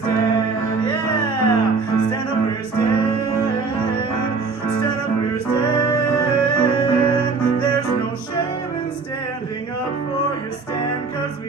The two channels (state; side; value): quieter; left; 4.5 dB